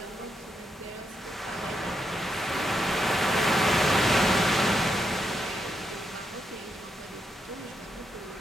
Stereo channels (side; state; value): both; normal; correlation 0.82